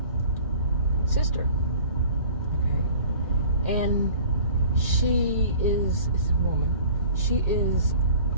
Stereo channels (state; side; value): inverted; both; correlation -0.47